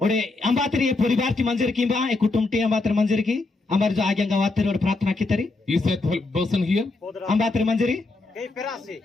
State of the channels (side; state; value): right; quieter; 3.3 dB